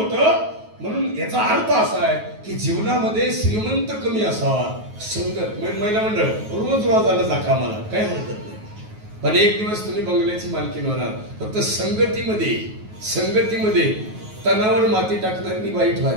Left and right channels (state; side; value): late; left; 9.3 ms